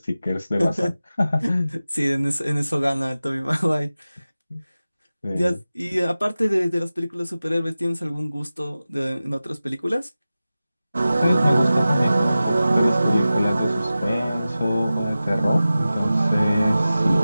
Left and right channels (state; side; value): inverted; both; correlation -0.95